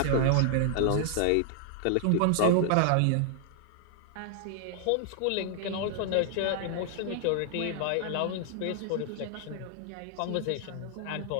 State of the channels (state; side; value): different; both; correlation 0.00